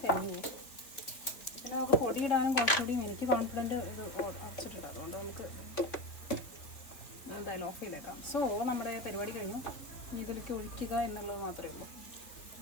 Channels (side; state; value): right; late; 3.3 ms